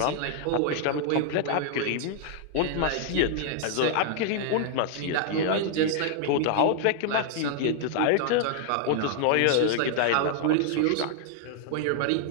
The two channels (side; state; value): both; different; correlation -0.01